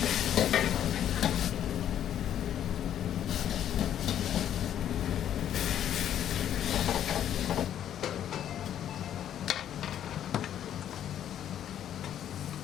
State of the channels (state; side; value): quieter; right; 10.4 dB